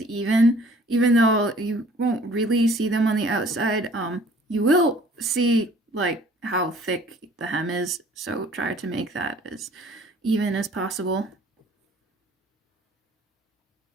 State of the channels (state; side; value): normal; both; correlation 0.54